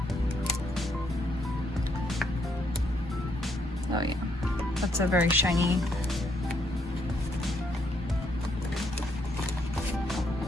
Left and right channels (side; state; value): both; normal; correlation 0.73